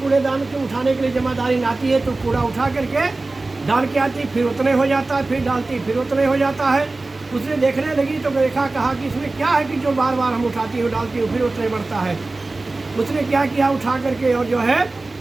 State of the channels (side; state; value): left; quieter; 3.3 dB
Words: कूड़ेदान को उठाने के लिए जमादारी आती है तो कूड़ा उठा करके डाल के आती, फिर उतने हो जाता है, फिर डालती फिर उतने हो जाता है। उसने देखने लगी तो देखा, कहा कि इसमें क्या है कि जो बार बार हम उठाती हूँ डालती हूँ फिर उतने बढ़ता है। उसने क्या किया, उठा करके और जो है